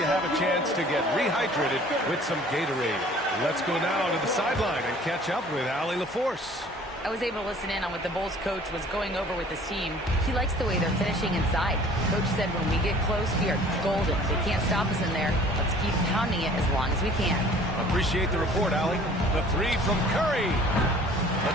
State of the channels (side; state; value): both; normal; correlation 0.51